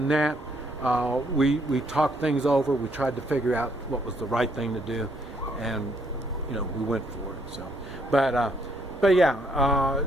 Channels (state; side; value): normal; both; correlation 0.70